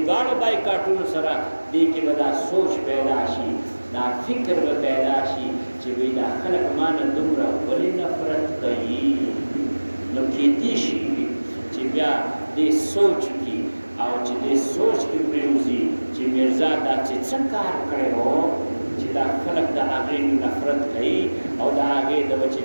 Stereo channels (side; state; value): both; inverted; correlation -1.00